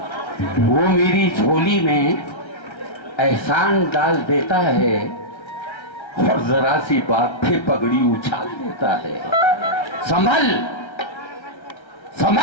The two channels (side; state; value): right; late; 1.3 ms